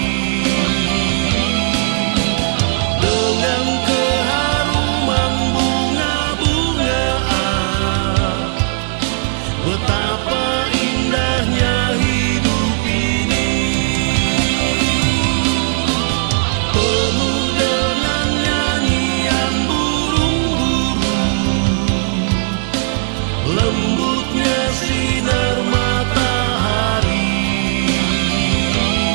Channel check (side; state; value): left; silent; digital silence